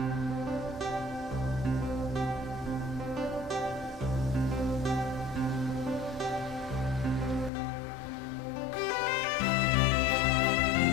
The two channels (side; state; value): right; drops out; at 7.5 s